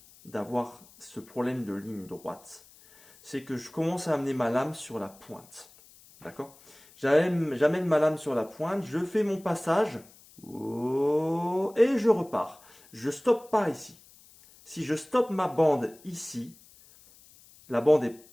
d'avoir ce problème de ligne droite, c'est que je commence à amener ma lame sur la pointe. D'accord? J'amène ma lame sur la pointe, je fais mon passage et je repars. Je stoppe pas ici. Si je stoppe ma bande ici, la bande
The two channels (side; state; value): left; noise; hiss, 25 dB below the sound